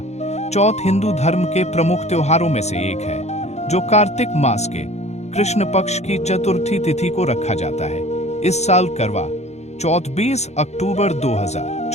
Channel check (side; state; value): right; late; 0.32 ms